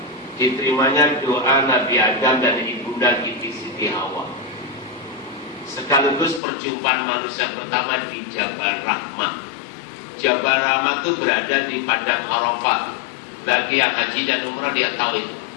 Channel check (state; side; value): drops out; right; at 6.4 s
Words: diterimanya doa Nabi Adam dan ibunda Siti Hawa, sekaligus perjumpaan manusia pertama di Jabal Rahmah. Jabal Rahmah itu berada di padang Arafah. Bagi yang haji dan umrah dia tahu itu.